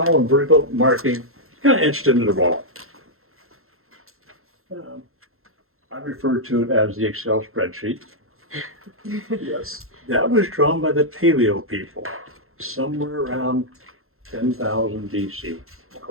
and vertical marking, kind of etched into the wall. I refer to it as the Excel spreadsheet. Yes. That was drawn by the Paleo people, somewhere around 10,000 BC,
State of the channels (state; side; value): late; left; 0.62 ms